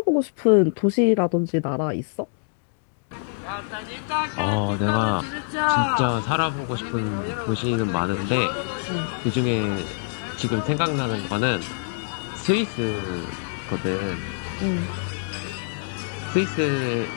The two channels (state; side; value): silent; right; digital silence